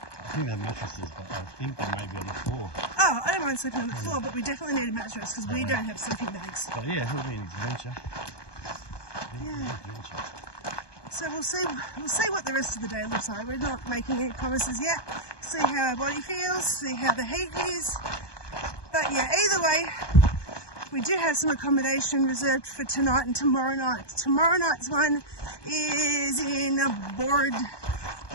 think they have mattresses, but I think they may be on the floor. Oh, I don't mind sleeping on the floor, but we definitely need a mattress because we don't have sleeping bags. But yeah, it'll be an adventure. Yeah. So we'll see what the rest of the day looks like. We're not making any promises yet. See how our body feels, see how the heat is. But yeah, either way, we do have some accommodation reserved for tonight and tomorrow night. Tomorrow night's one is in Bordadilla.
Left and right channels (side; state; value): right; late; 1.2 ms